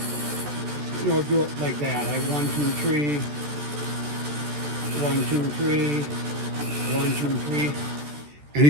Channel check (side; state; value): left; late; 14 ms